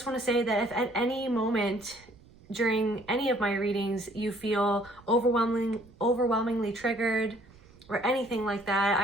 want to say that if at any moment during any of my readings you feel overwhelmingly triggered or anything like that,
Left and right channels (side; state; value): right; noise; rumble, 26 dB below the sound